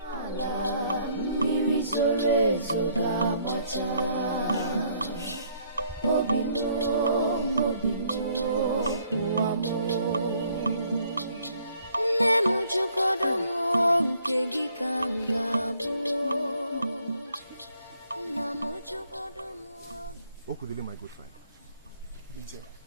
Okudele, my good friend. Obinze.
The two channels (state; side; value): inverted; both; correlation -0.65